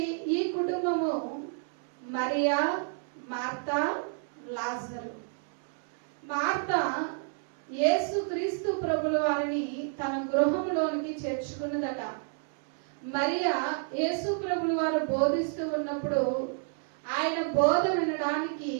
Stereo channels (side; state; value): left; silent; 58 dB below the other